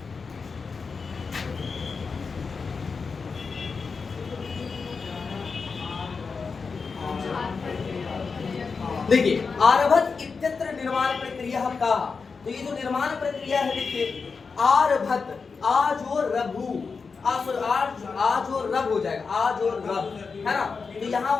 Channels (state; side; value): quieter; right; 5.0 dB